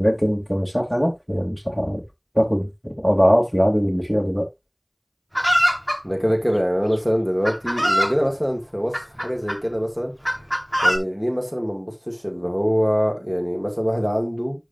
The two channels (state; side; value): identical; both; correlation 1.00